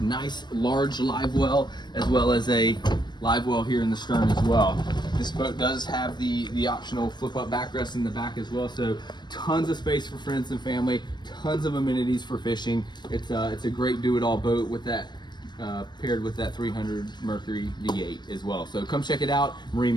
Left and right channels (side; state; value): right; late; 0.21 ms